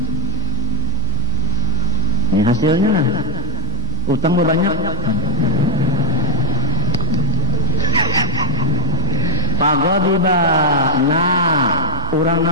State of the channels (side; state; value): both; normal; correlation -0.04